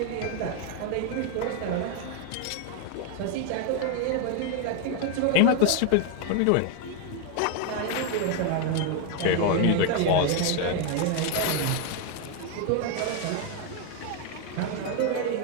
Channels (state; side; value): different; both; correlation 0.01